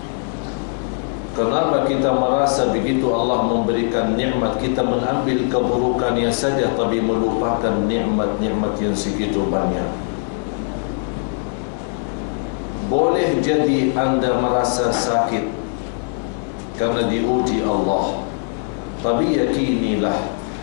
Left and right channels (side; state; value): right; silent; 65 dB below the other